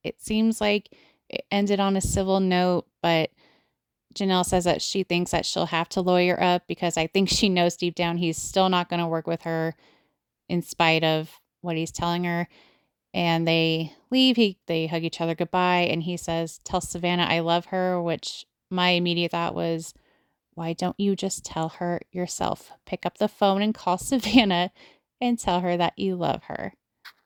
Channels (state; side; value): identical; both; correlation 1.00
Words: it seems like it ended on a civil note, but Janelle says that she thinks that she'll have to lawyer up because I think she knows deep down he's still not going to work with her in spite of what he's telling her. And they leave. They hug each other goodbye. And he says, "Tell Savannah I love her," which my immediate thought was, why don't you just tell her yourself? Pick up the phone and call Savannah and tell her that you love her.